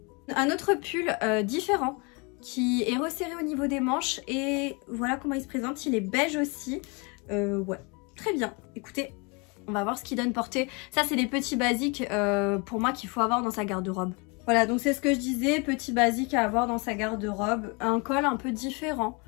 Un autre pull différent qui est resserré au niveau des manches, et voilà comment il se présente, il est beige aussi. Ouais, très bien. Écoutez, on va voir ce qu'il donne portée. Ça, c'est des petits basiques pour moi qu'il faut avoir dans sa garde-robe. Voilà, donc c'est ce que je disais, petit basique à avoir dans sa garde-robe. Un col un peu différent,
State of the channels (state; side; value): quieter; right; 31.0 dB